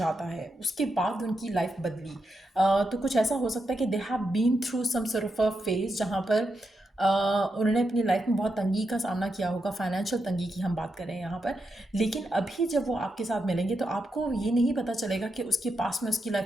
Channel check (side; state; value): both; normal; correlation 0.85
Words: आता है, उसके बाद उनकी लाइफ बदली। तो कुछ ऐसा हो सकता है कि they have been through some sort of a phase जहाँ पर उन्होंने अपनी लाइफ में बहुत तंगी का सामना किया होगा, फाइनेंशियल तंगी की हम बात करें यहाँ पर। लेकिन अभी जब वो आपके साथ मिलेंगे तो आपको ये नहीं पता चलेगा कि उसके पास में उसकी